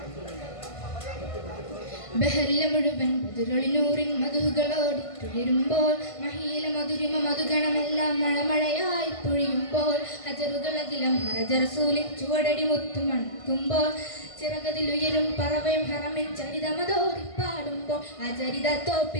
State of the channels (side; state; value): right; late; 1.5 ms